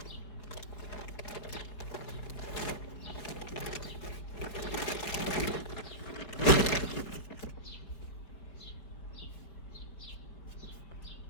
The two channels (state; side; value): late; right; 4.7 ms